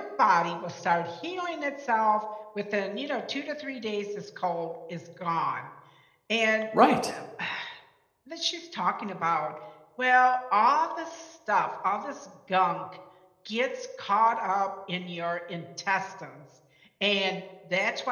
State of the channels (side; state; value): both; identical; correlation 1.00